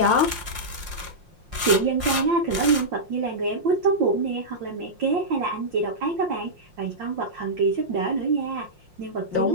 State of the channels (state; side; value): late; left; 5.6 ms